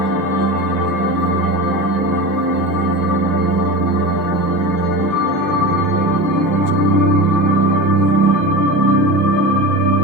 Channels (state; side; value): normal; both; correlation 0.28